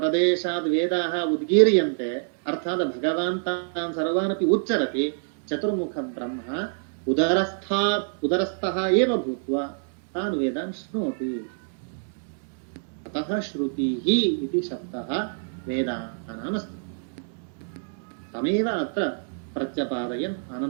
वेदाः उद्गीर्यन्ते अर्थात् भगवान् तान् सर्वान् अपि उच्चरति चतुर्मुख ब्रह्म उदरस्थः एव भूत्वा तान् वेदान् शृणोति अतः श्रुतिः इति शब्दः वेदानामस्ति तमेव अत्र प्रत्यपादयन्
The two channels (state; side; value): silent; left; 61 dB below the other